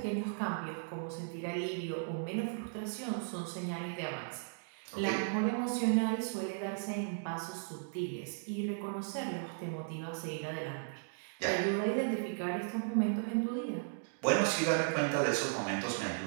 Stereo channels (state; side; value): silent; left; digital silence